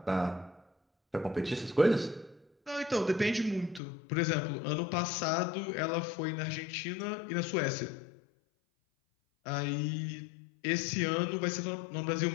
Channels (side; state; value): right; drops out; at 3.8 s